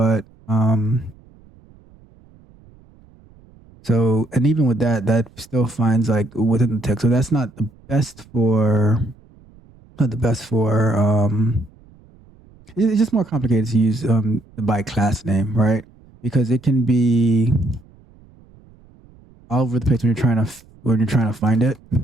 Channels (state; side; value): noise; right; rumble, 27 dB below the sound